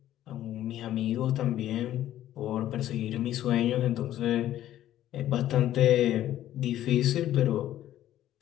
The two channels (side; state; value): right; quieter; 12.7 dB